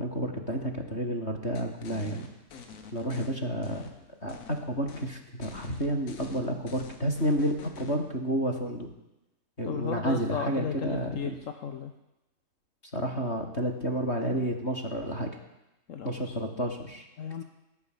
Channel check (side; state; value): right; late; 3.2 ms